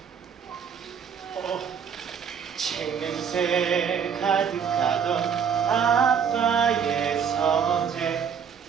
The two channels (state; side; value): quieter; left; 7.2 dB